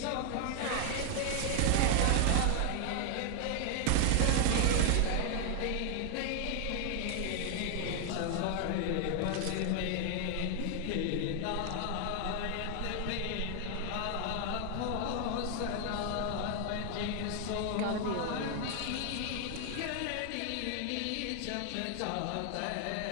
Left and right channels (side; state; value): both; different; correlation 0.00